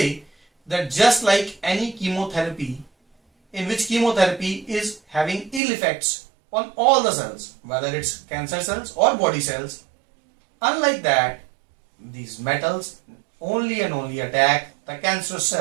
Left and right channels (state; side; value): drops out; left; at 5.6 s